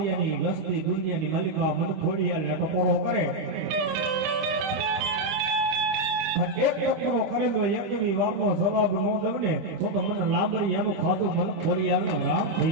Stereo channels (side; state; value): left; late; 25 ms